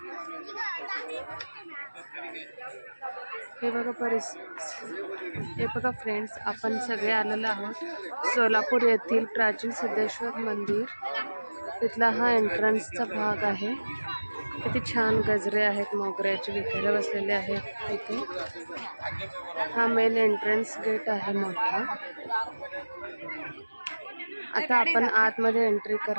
बघा फ्रेंड्स, आपण सगळे आलेलो आहोत सोलापूर येथील प्राचीन सिद्धेश्वर मंदिर. तिथला हा एंट्रन्सचा भाग आहे. किती छान गजरे आहेत, मोगऱ्याचे विकायला बसलेले आहेत तिथे. हा मेन एंट्रन्स गेट आहे मोठा. आता आपण आतमध्ये एंट्री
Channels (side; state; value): both; inverted; correlation -1.00